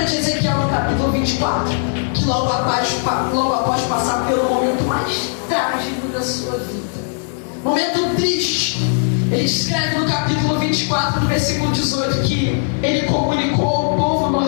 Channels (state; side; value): silent; right; 55 dB below the other